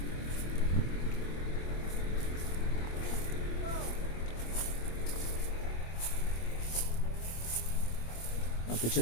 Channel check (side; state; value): right; late; 25 ms